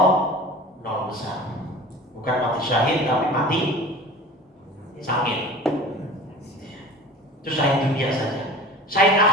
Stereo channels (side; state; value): both; normal; correlation 0.39